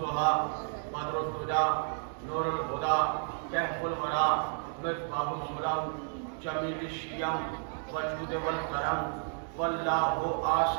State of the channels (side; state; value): left; silent; 57 dB below the other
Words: بدر الدجى نور الهدى كهف الورى مصباح الظلم جميل الشيم وجود والكرم. والله